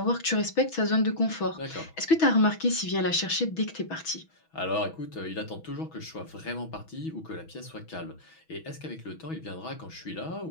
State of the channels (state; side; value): late; right; 6.2 ms